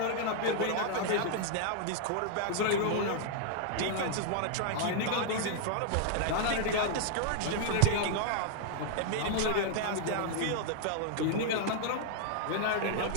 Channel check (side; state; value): both; different; correlation -0.01